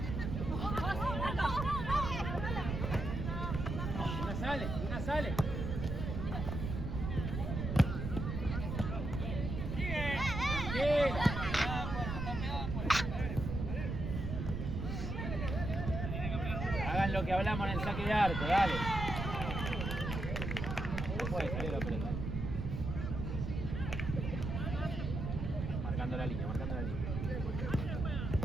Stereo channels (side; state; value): right; noise; rumble, 3 dB below the sound